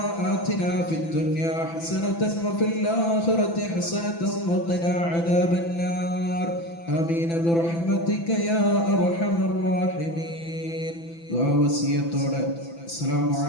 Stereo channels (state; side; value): late; right; 6.0 ms